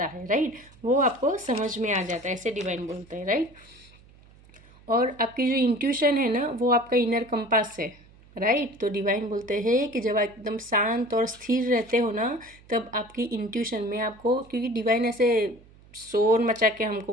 है, राइट, वो आपको समझ में आ जाता है, ऐसे डिवाइन बोलते हैं, राइट। और आपकी जो इंट्यूशन है ना, वो आपका इनर कंपास है, राइट। तो डिवाइन बोलते हैं कि जब आप एकदम शांत और स्थिर रहते हो ना, तब आपकी इंट्यूशन में आपको, क्योंकि डिवाइन ऐसे शोर मचा के हमको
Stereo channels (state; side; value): noise; right; hum, 25 dB below the sound